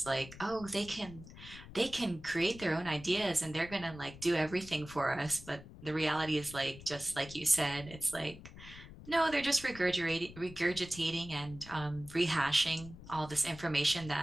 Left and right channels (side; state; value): left; noise; rumble, 16 dB below the sound